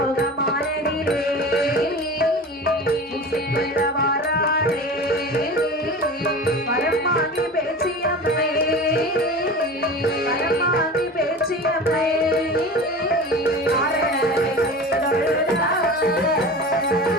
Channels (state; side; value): normal; both; correlation 0.34